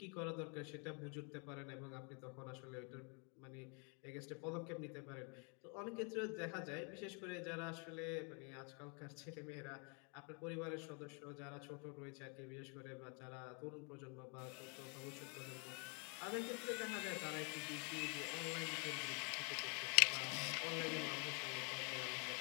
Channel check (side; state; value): right; quieter; 36.1 dB